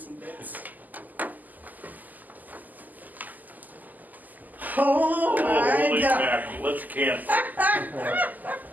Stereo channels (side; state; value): left; late; 0.083 ms